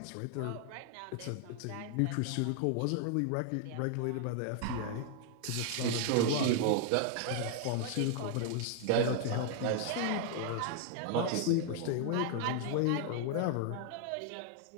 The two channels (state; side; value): different; both; correlation 0.00